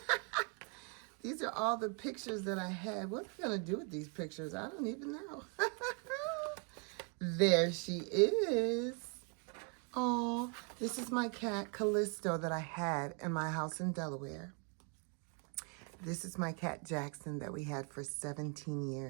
These are all the pictures that I had. What am I going to do with these pictures? I don't even know. There she is. Oh, this is my cat, Callisto, that I had in my house in Delaware. This is my cat, Jackson, that we had for 17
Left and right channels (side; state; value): left; quieter; 35.5 dB